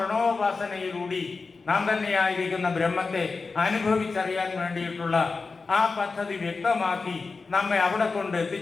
നാം തന്നെയായിരിക്കുന്ന ബ്രഹ്മത്തെ അനുഭവിച്ചറിയാൻ വേണ്ടിയിട്ടുള്ള ആ പദ്ധതി വ്യക്തമാക്കി നമ്മെ അവിടെ കൊണ്ട്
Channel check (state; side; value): quieter; right; 4.3 dB